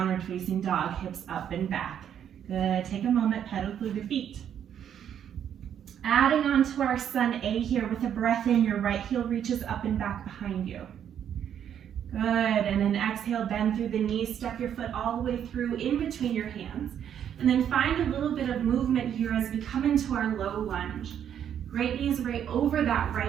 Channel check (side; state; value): left; quieter; 9.2 dB